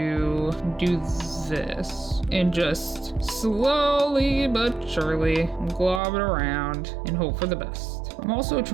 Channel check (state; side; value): drops out; left; at 6.0 s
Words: do this and just slowly but surely glob it around and hope for the best. I'm also